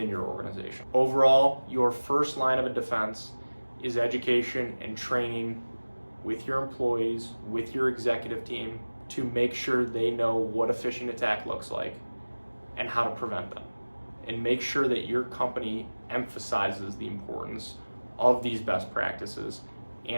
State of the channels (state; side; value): inverted; both; correlation -1.00